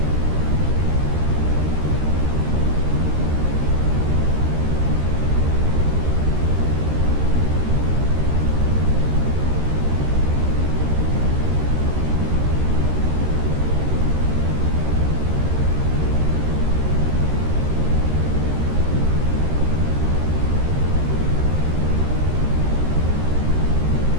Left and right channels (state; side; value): late; left; 13 ms